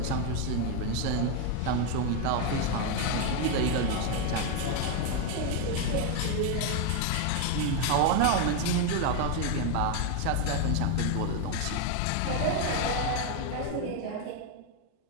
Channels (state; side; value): different; both; correlation 0.01